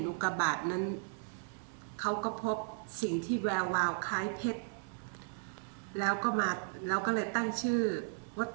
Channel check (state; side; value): silent; left; 54 dB below the other